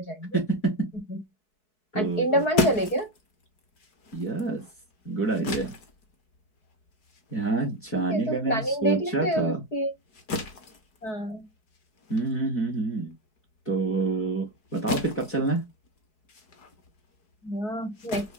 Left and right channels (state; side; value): late; right; 4.7 ms